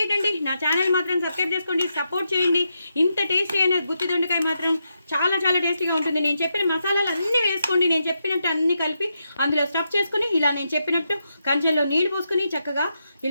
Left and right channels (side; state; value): both; inverted; correlation -0.84